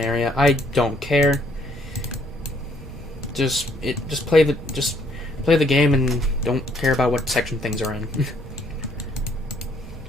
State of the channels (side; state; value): both; normal; correlation 0.66